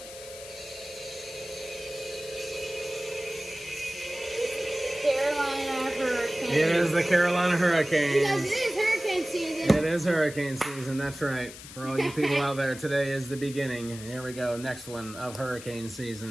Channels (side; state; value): left; noise; hiss, 14 dB below the sound